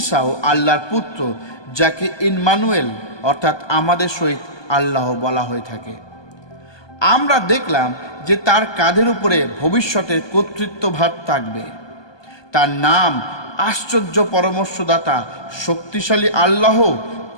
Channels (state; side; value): late; right; 1.2 ms